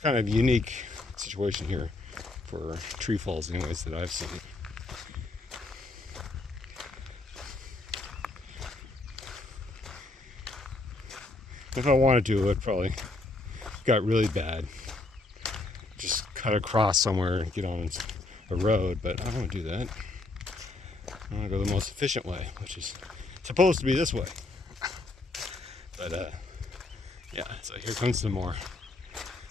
kind of a unique situation here for tree falls anyways that I've seen. If I wanted to, it probably got really bad. Just cut across somewhere and get on a road, but I don't want to do that. I want to go the most efficient way, which is supposed to be this way. But yeah, so here comes some more.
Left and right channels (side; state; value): right; quieter; 3.1 dB